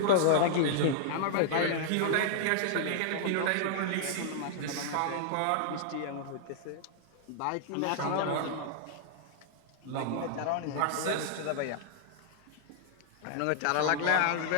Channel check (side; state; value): both; different; correlation -0.01